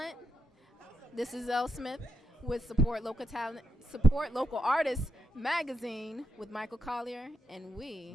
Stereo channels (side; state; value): both; normal; correlation 0.83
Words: This is Elle Smith with Support Local Talent, Support Local Artists magazine with Michael Colyar, and